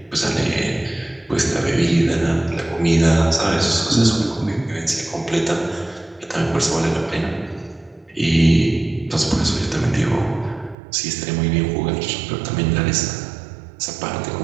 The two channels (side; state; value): left; drops out; at 10.8 s